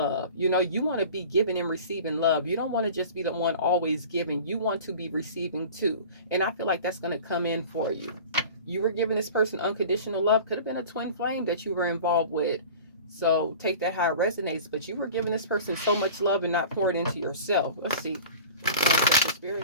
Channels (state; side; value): inverted; both; correlation -0.40